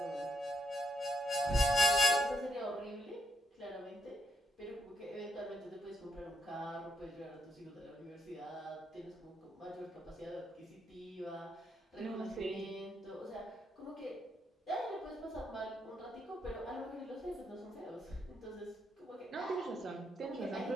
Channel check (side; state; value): both; normal; correlation 0.76